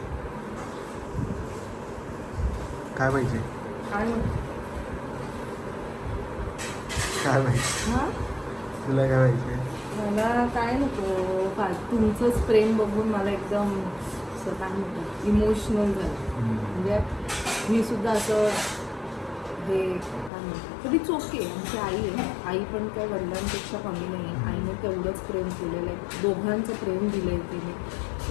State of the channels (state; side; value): drops out; right; at 20.3 s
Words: काय पाहिजे? काय काय पाहिजे? हा तुला काय पाहिजे? मला काय नको तुमचंच प्रेम बघून मला एकदम असं काय म्हणतात इमोशनल झालं म्हणजे मी सुद्धा असं हे काय म्हणतात कधी चोके आमची आई आहे आई पण काय वडिलांपेक्षा कमी नाही आहे आईने तेवढंच प्रेम केलेलं आहे दोघांचं प्रेम दिलं आहे तिने